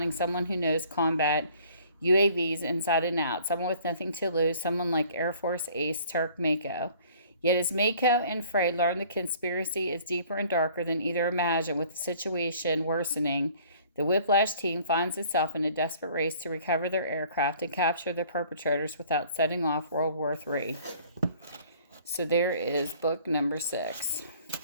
someone who knows combat UAVs inside and out, someone with nothing to lose, someone like Air Force ace Turk Mako. Yet as Mako and Frey learn the conspiracy is deeper and darker than either imagined, with the situation worsening, the Whiplash team finds itself in a desperate race to recover their aircraft and capture the perpetrators without setting off World War III. So there is book number 6.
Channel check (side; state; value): both; inverted; correlation -0.54